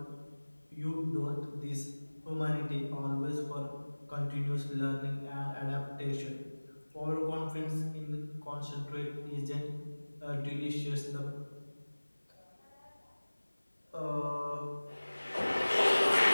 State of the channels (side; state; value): both; inverted; correlation -1.00